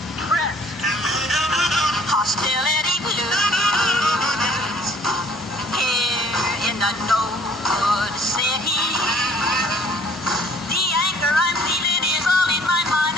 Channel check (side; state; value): both; normal; correlation 0.58